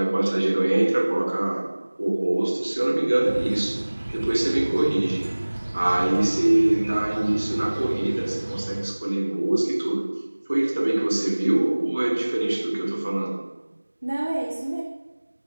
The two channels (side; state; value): both; inverted; correlation -1.00